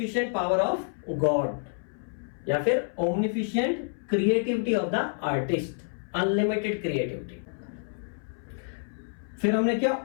power of God, या फिर omnificent creativity of the artist, unlimited creativity. फिर हमने क्या,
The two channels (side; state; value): right; silent; 59 dB below the other